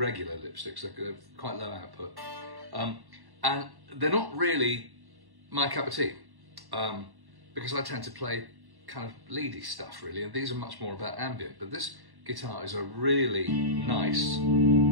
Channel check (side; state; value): left; late; 1.1 ms